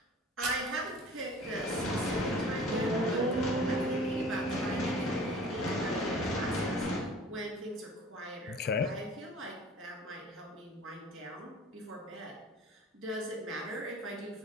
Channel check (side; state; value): both; normal; correlation 0.45